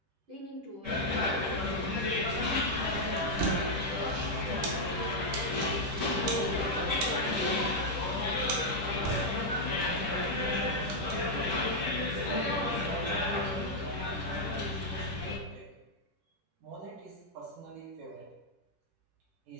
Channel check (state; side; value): late; left; 10 ms